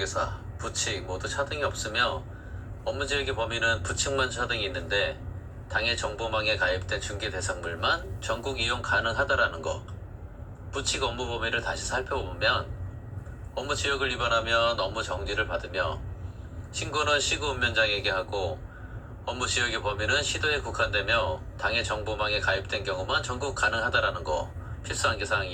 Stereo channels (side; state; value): both; identical; correlation 1.00